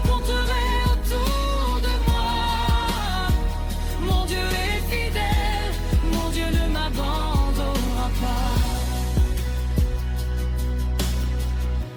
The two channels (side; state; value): both; identical; correlation 1.00